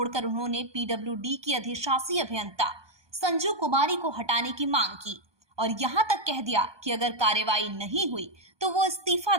उन्होंने पीडब्ल्यूडी की अधिशासी अभियंता संजू कुमारी को हटाने की मांग की और यहां तक कह दिया कि अगर कार्रवाई नहीं हुई तो वो इस्तीफा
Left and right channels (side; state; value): left; late; 1.2 ms